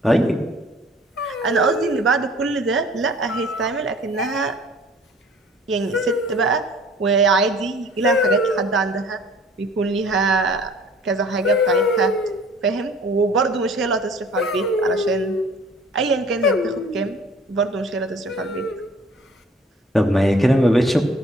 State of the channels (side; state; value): both; normal; correlation 0.51